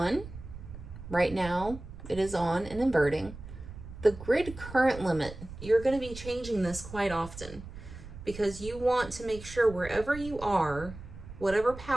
Right now it is on and inverting. The grid current limit, you're going to be changing this quite often because you want to make sure wherever you are, whatever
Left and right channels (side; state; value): right; noise; rumble, 13 dB below the sound